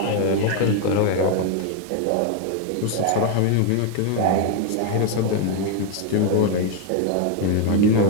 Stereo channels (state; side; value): different; both; correlation 0.01